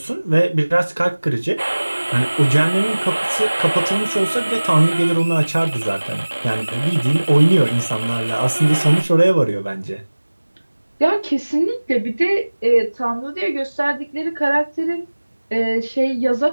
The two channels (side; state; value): both; inverted; correlation -1.00